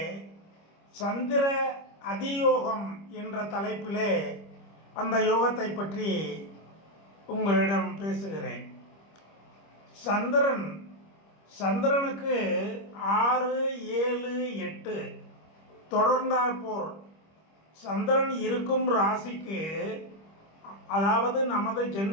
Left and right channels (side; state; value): right; late; 25 ms